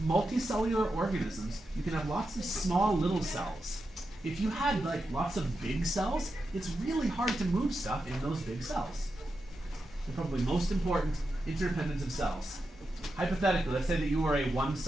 Multicellular organisms, you can have lots of small little cells. If you had like lots of big cells, it's really hard to move stuff in those big cells. And probably most important, interdependence of cells. Hypothetically, let's say that you are a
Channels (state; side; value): normal; both; correlation 0.88